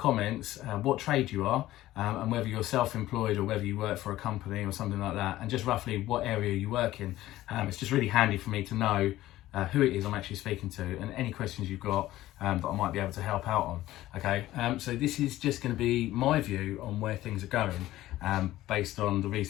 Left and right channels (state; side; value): quieter; right; 15.4 dB